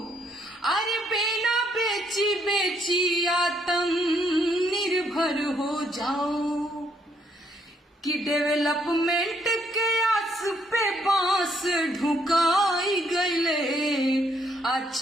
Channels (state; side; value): normal; both; correlation 0.71